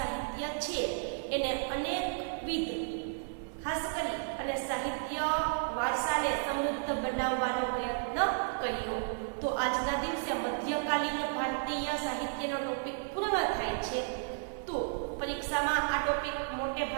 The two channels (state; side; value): silent; left; 56 dB below the other